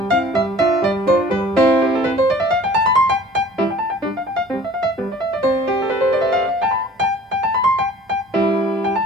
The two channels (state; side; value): normal; both; correlation 0.49